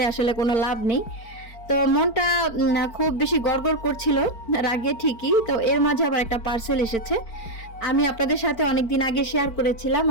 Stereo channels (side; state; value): right; late; 4.4 ms